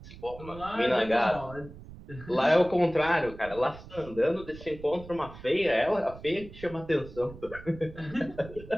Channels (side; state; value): right; noise; rumble, 16 dB below the sound